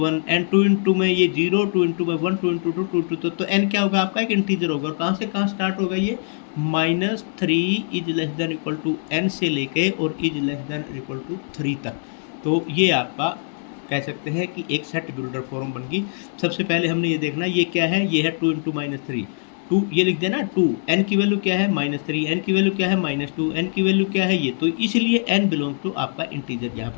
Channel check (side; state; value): right; silent; 62 dB below the other